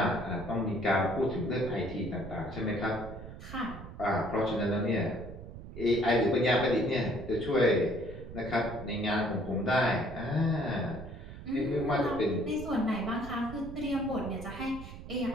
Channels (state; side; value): noise; right; rumble, 12 dB below the sound